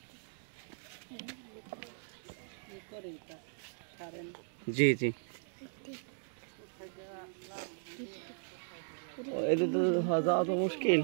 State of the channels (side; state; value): left; silent; digital silence